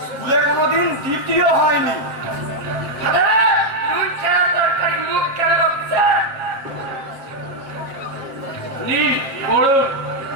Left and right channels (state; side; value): late; left; 7.3 ms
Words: স্কুলে কোনোদিন দ্বিতীয় হয়নি নুন ছাড়া তরকারি মুখ কেন হচ্ছে নিন করুন।